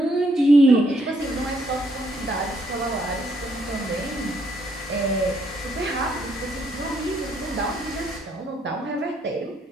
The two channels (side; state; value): both; normal; correlation 0.71